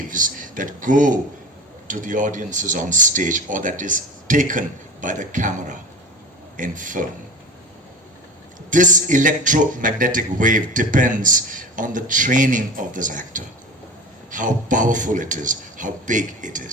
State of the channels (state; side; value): normal; both; correlation 0.34